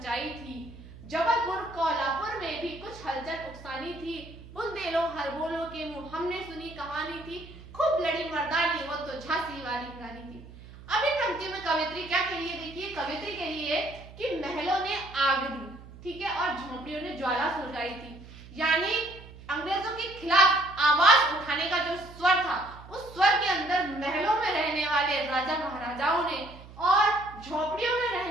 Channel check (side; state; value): right; noise; hum, 18 dB below the sound